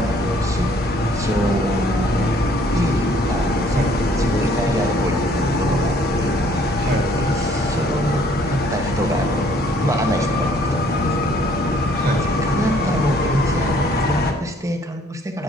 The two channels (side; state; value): both; normal; correlation 0.61